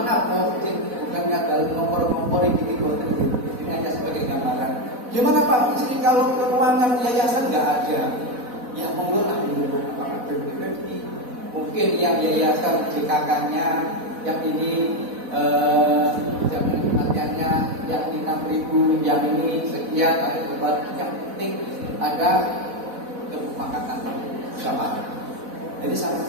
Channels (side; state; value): left; late; 4.1 ms